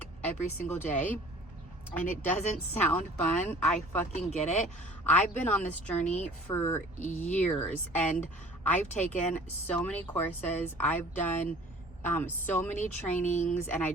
every single day. And it doesn't sound fun. I fucking get it. I've been on this journey for years, and I've taken so many courses. I've done so many trainings, and I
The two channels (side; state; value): both; normal; correlation 0.48